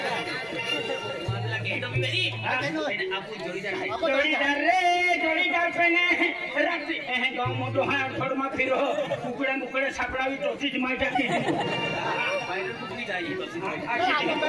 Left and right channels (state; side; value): identical; both; correlation 1.00